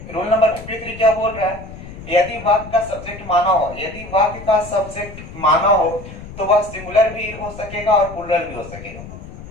रूल नंबर 53 क्या बोल रहा है, यदि वाक्य का सब्जेक्ट माना हो, यदि वाक्य का सब्जेक्ट माना हो तो वह सिंगुलर भी हो सकेगा और प्लूरल भी हो सकेगा।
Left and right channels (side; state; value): left; noise; rumble, 14 dB below the sound